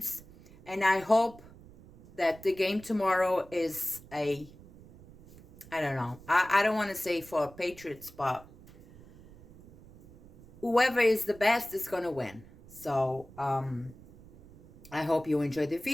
And I hope that the game tomorrow is I don't know. I don't want to say for Patriots, but whoever is the best is going to win. So, I hope you enjoyed the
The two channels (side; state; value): right; noise; rumble, 21 dB below the sound